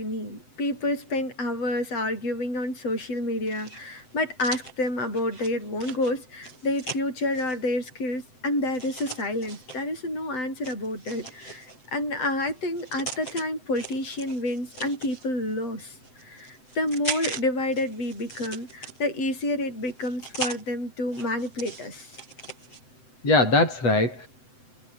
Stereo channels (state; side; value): late; right; 7.8 ms